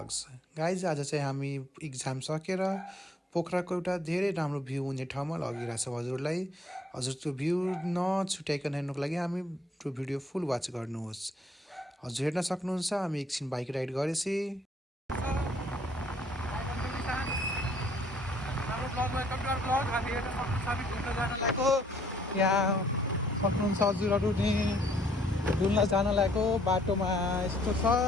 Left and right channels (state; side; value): normal; both; correlation 0.64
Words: guys आज चाहिँ हामी इक्जाम सकेर पोखराको एउटा धेरै राम्रो भ्यू हुने ठाउँमा लगिरहेको छौँ हजुरलाई। हजुर त्यो भ्यू नछुट्याइकन हेर्नुको लागि हामी त्यो भिडियो फुल वाच गर्नुहोस्। हजुर हेर्न सक्नुहुन्छ हामी एकछिन बाइक राइड गरेपछि यहाँ सक्नुहुन्छ हजुरहरू नि डुल्न जान लागेको बाटोमा यस्तो छ।